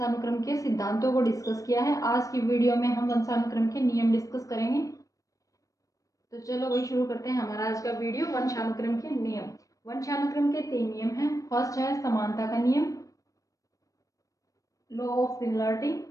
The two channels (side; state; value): right; late; 0.16 ms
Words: के सिद्धांतों को डिस्कस किया है। आज की वीडियो में हम वंशानुक्रम के नियम डिस्कस करेंगे। तो चलो वही शुरू करते हैं हमारा आज का वीडियो, वंशानुक्रम के नियम। वंशानुक्रम के 3 नियम हैं। फर्स्ट है समानता का नियम, लॉ ऑफ सिमिलरिटी,